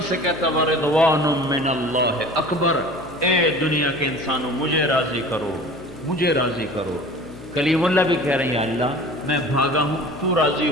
سے کہتا ورضوان من اللہ اکبر، اے دنیا کے انسانوں مجھے راضی کرو، مجھے راضی کرو. کلیم اللہ بھی کہہ رہے ہیں اللہ میں بھاگا ہوں تو راضی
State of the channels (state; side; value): noise; left; hum, 19 dB below the sound